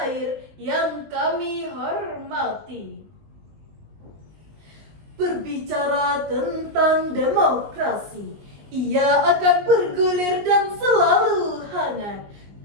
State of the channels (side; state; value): left; late; 20 ms